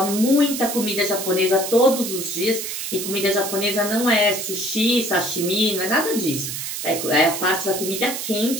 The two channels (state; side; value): noise; right; hiss, 5 dB below the sound